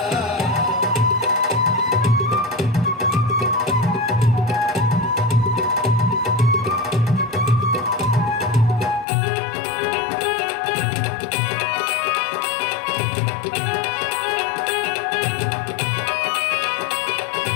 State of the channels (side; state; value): right; drops out; at 9.1 s